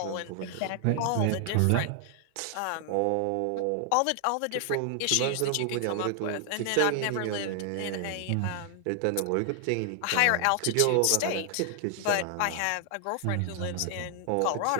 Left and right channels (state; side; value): different; both; correlation 0.00